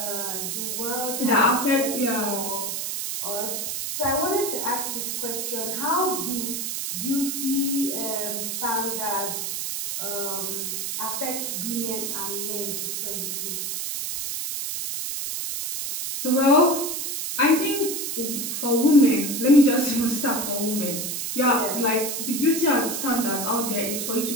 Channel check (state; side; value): noise; right; hiss, 3 dB below the sound